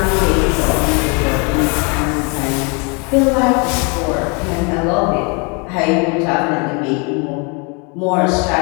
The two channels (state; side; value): quieter; right; 32.6 dB